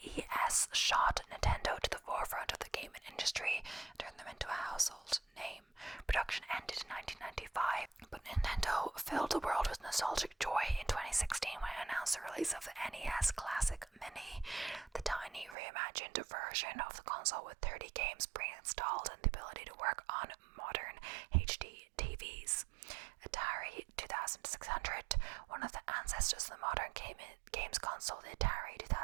shot Nintendo to the forefront of the gaming industry, turned them into a household name. Production ended in 1995, but Nintendo filled the world with nostalgic joy in 2016 when it announced the release of the NES Classic Mini, the tiny reimagined version of the console with 30 games pre-installed and the ability to work on modern HD TVs. Atari 2600, one of the ancestors of the modern games console, the Atari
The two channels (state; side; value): drops out; left; at 15.6 s